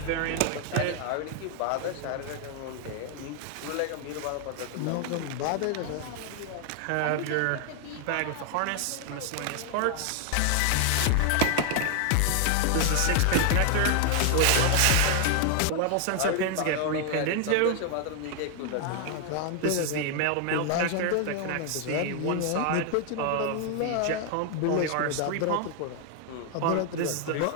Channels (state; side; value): different; both; correlation 0.00